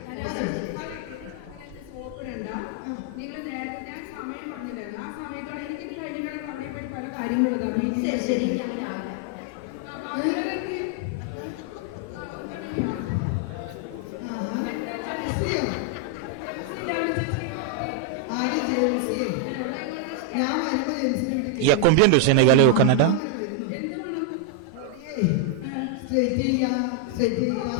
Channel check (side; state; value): both; different; correlation 0.00